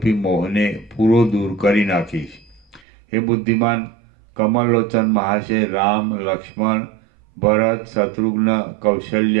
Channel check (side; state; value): left; drops out; at 2.8 s